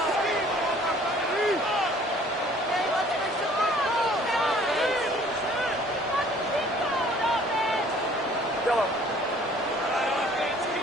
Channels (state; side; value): normal; both; correlation 0.55